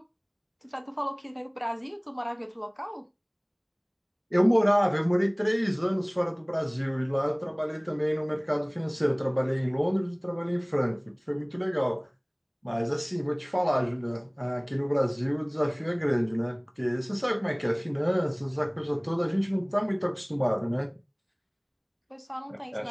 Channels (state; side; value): identical; both; correlation 1.00